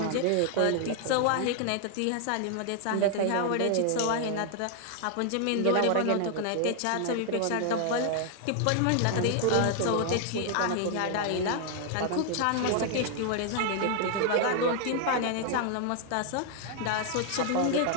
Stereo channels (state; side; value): different; both; correlation 0.00